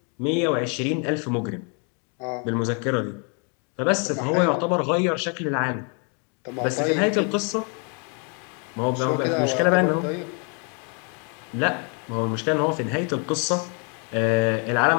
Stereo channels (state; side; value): quieter; right; 37.5 dB